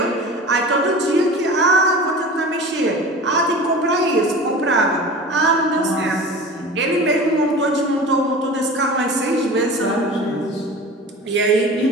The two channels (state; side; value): normal; both; correlation 0.36